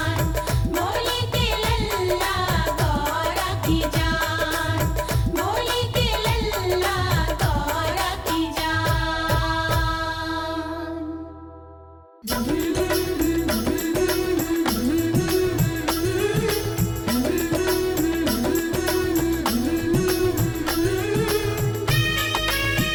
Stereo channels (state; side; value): identical; both; correlation 1.00